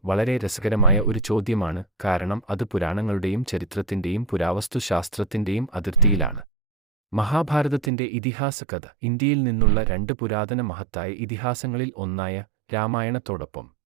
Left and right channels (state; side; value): drops out; left; at 7.9 s